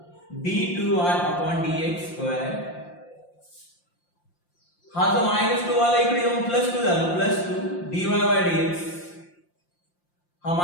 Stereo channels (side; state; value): right; late; 5.7 ms